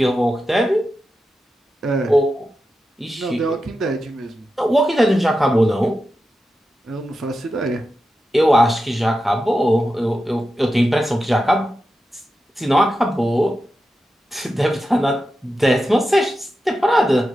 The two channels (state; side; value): normal; both; correlation 0.90